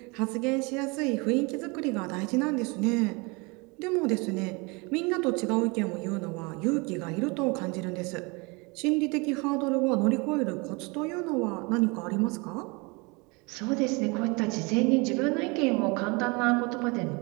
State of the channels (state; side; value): quieter; left; 28.2 dB